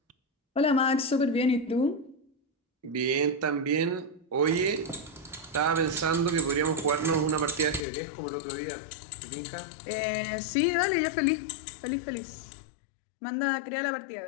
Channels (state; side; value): drops out; right; at 7.9 s